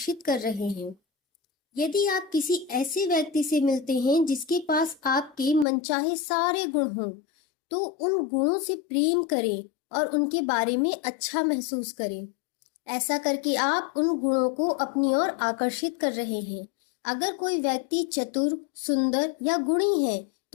कर रहे हैं। यदि आप किसी ऐसे व्यक्ति से मिलते हैं जिसके पास आपके मनचाहे सारे गुण हों, तो उन गुणों से प्रेम करें और उनके बारे में अच्छा महसूस करें। ऐसा करके आप उन गुणों को अपनी ओर आकर्षित कर रहे हैं। अगर कोई व्यक्ति चतुर, सुंदर या गुणी है,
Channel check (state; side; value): drops out; right; at 5.7 s